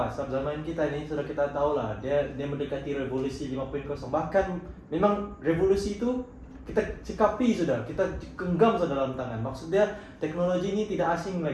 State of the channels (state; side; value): identical; both; correlation 1.00